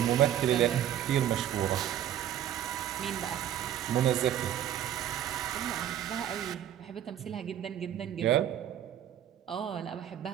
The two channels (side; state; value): left; quieter; 10.8 dB